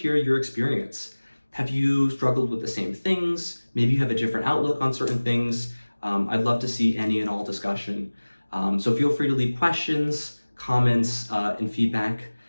your experience. Have you struggled with the same things? Maybe you have a different outlook on certain things. I'd love to see any and all discussion. So feel free to leave questions, comments, and feedback.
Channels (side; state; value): both; inverted; correlation -1.00